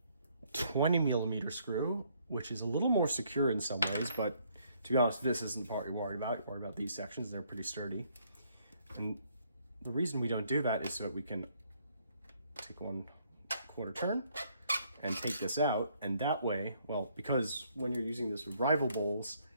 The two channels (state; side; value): inverted; both; correlation -0.68